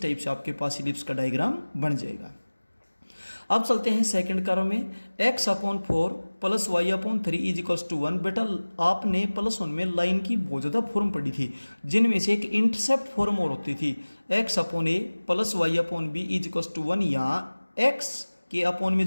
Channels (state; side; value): inverted; both; correlation -1.00